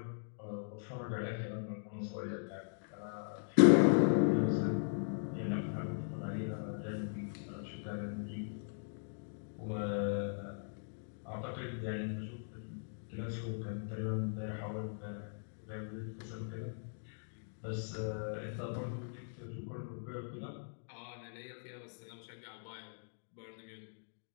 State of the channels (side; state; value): right; silent; digital silence